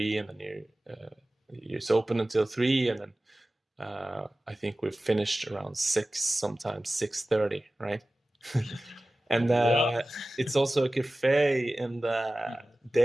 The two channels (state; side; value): normal; both; correlation 0.96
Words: and then it's open until 3, and then I think we've finished around 6, sometimes 6:30, right? And it's also a cafe in the